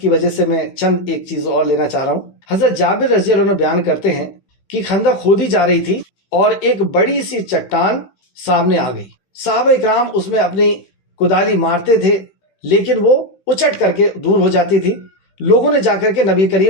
وجہ سے میں چند ایک چیز اور لینا چاہ رہا ہوں. حضرت جابر رضی اللہ عنہ بیان کرتے ہیں کہ خندق کھودی جا رہی تھی اور ایک بڑی سی چٹان سامنے آ گئی. صحابہ اکرام اس میں اپنی کدالی مارتے تھے لیکن وہ اچٹ کر کے دور ہو جاتی تھی. لوگوں نے جا کر کے نبی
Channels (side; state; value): right; late; 15 ms